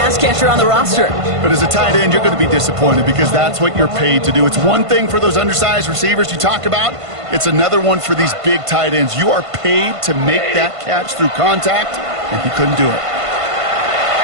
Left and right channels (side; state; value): left; late; 1.5 ms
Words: catcher on the roster. But as a tight end, you're going to be disappointed because that's what you're paid to do. It's one thing for those undersized receivers you talk about. It's another one for these big tight ends. You are paid to make that catch through contact, and he couldn't do it.